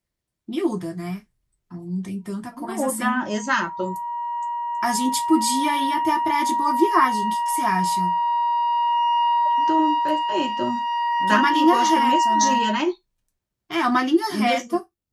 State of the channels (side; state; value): both; identical; correlation 1.00